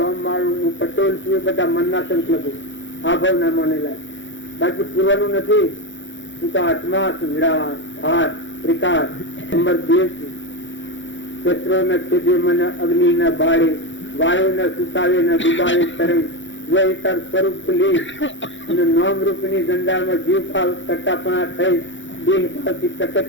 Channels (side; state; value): right; late; 0.55 ms